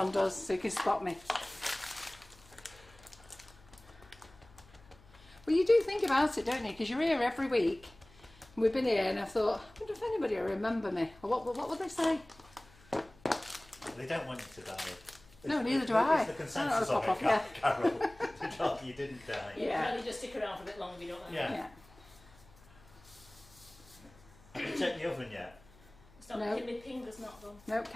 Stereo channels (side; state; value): left; noise; hum, 25 dB below the sound